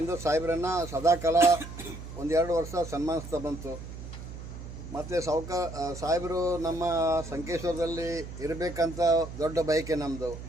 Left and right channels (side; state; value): right; noise; hum, 11 dB below the sound